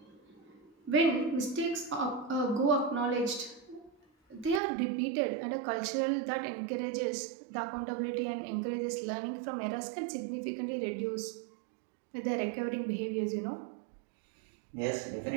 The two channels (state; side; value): drops out; left; at 4.6 s